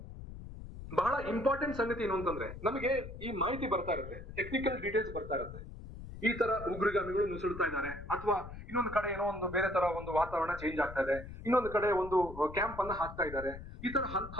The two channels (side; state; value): left; noise; rumble, 12 dB below the sound